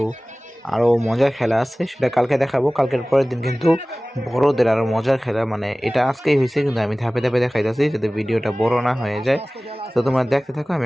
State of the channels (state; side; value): normal; both; correlation 0.98